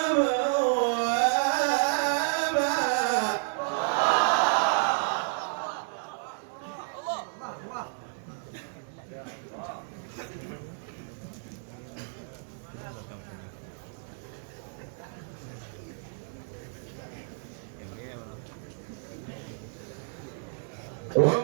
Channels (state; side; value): silent; left; 57 dB below the other